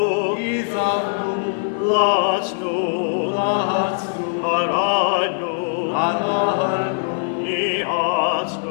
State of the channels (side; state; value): right; silent; digital silence